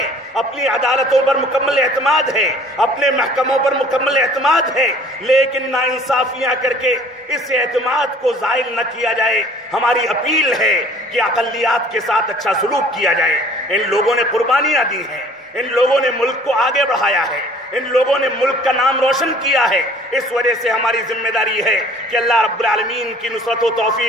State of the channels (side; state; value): both; normal; correlation 0.52